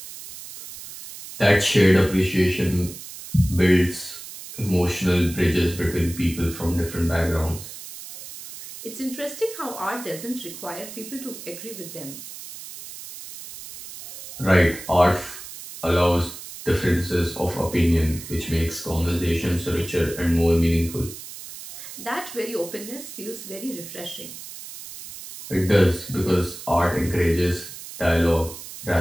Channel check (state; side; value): noise; right; hiss, 13 dB below the sound